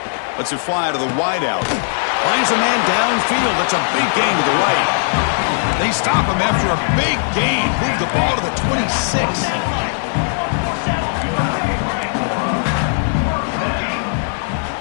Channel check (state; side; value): silent; right; 67 dB below the other